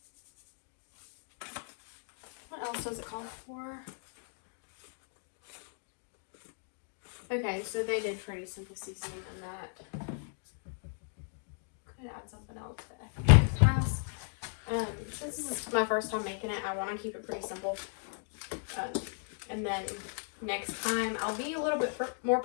What else does it call for? Okay, so they did pretty simple seasoning on that. Could add something else, but I think I'll pass. Since this is my first time making it, I want to keep it pretty simple. And then next time I'll be a little bit more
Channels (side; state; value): right; silent; 54 dB below the other